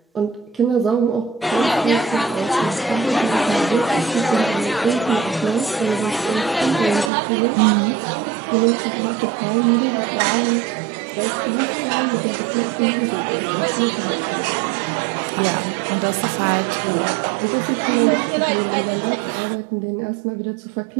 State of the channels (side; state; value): left; drops out; at 7.1 s